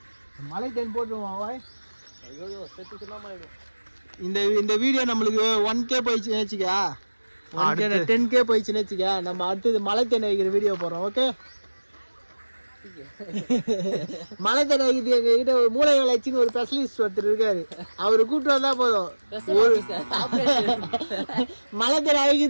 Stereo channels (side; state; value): both; inverted; correlation -1.00